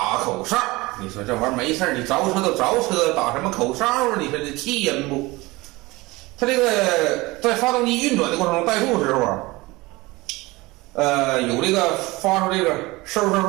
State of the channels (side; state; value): left; quieter; 21.8 dB